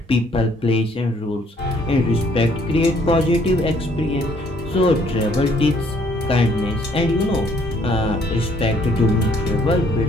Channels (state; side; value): normal; both; correlation 0.64